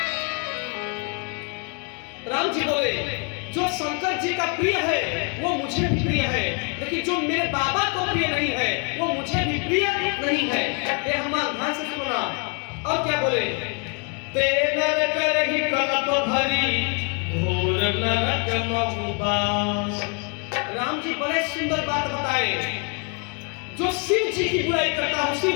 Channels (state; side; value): quieter; right; 36.7 dB